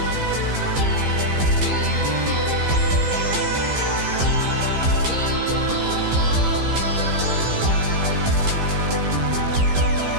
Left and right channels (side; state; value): left; late; 15 ms